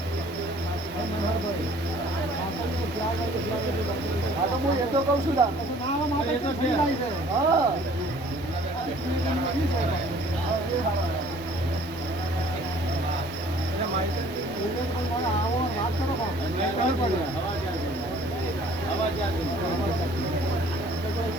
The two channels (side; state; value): both; normal; correlation 0.54